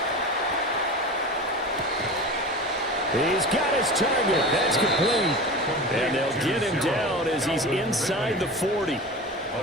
He's got his target. That's complete. And they'll get him down as he's inside the 40.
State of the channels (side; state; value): both; normal; correlation 0.31